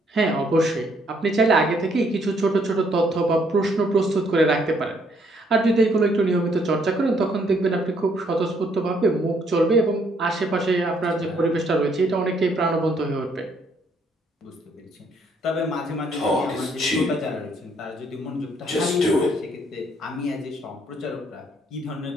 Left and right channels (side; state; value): both; normal; correlation 0.68